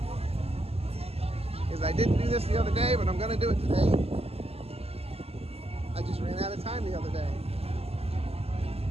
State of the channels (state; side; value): late; left; 0.29 ms